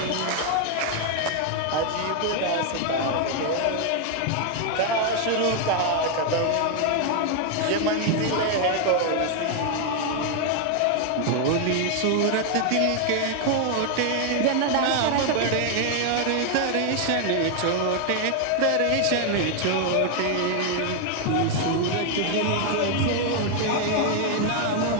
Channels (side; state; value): both; different; correlation 0.01